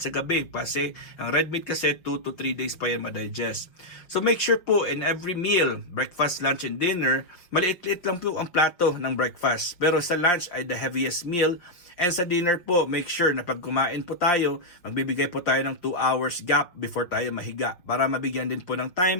sa gabi kasi ang red meat kasi 2 to 3 days pa yan ma-digest. So make sure po in every meal, breakfast, lunch, and dinner, maliit-liit lang po ang plato ng breakfast. Pero sa lunch ay the heaviest meal. And sa dinner po, make sure na pag kumain po tayo, magbibigay po tayo ng 2 hours gap before tayo mahiga para mabigyan din po ng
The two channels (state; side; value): late; right; 5.8 ms